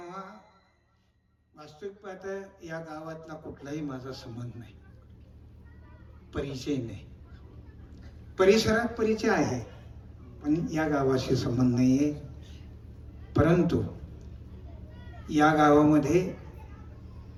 वास्तविक पाहता या गावातला कुठलाही माझा संबंध नाही, परिचय नाही. परिसरात परिचय आहे, पण या गावाशी संबंध नाहीये. परंतु या गावामध्ये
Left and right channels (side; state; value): both; identical; correlation 1.00